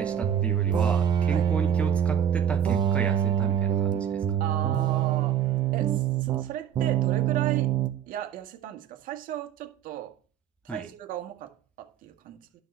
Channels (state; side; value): quieter; left; 9.2 dB